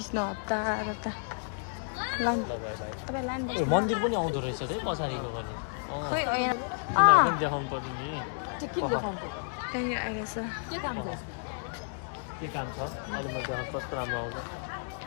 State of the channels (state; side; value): silent; right; digital silence